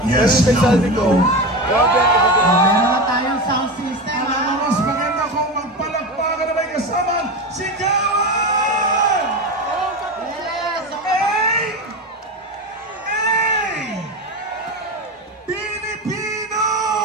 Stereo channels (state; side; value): normal; both; correlation 0.22